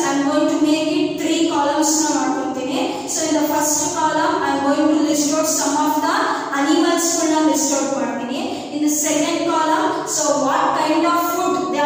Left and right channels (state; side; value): identical; both; correlation 1.00